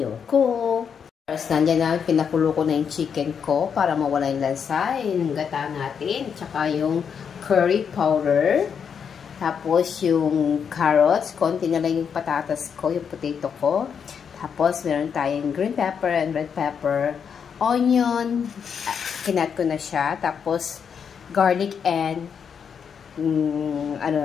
ko. First, nandiyan na, pinakulo ko na yung chicken ko para mawala yung lansa. Yung gata natin. Tsaka yung curry powder. Tapos, yung carrots. Konti na lang yung patatas ko, yung potato ko. Tapos, meron tayong green pepper and red pepper. Onion. Kinat ko na siya. Tapos, garlic and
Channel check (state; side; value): quieter; right; 7.0 dB